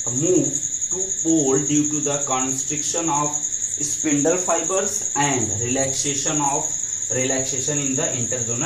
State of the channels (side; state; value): both; identical; correlation 1.00